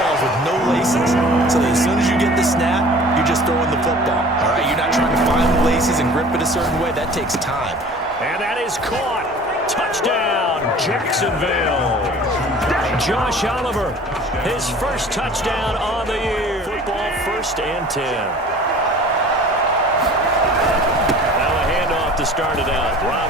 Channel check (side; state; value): both; normal; correlation 0.46